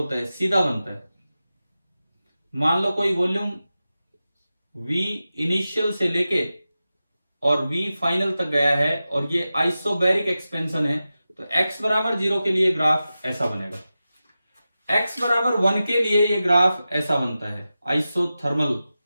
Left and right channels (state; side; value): inverted; both; correlation -0.93